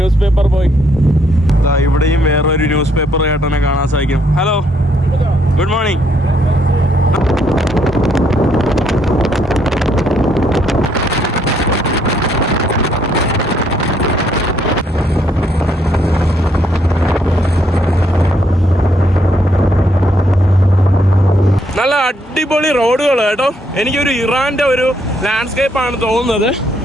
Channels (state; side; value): normal; both; correlation 0.71